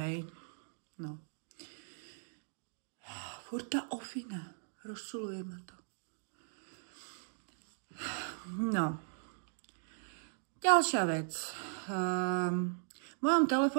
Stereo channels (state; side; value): silent; left; digital silence